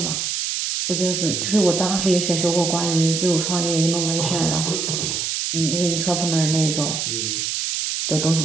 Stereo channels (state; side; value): noise; right; hiss, 1 dB below the sound